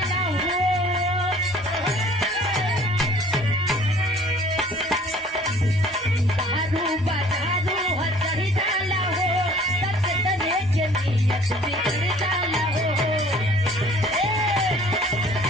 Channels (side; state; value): both; normal; correlation 0.53